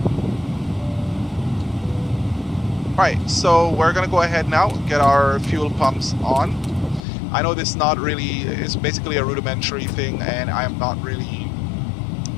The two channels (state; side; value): drops out; right; at 7.1 s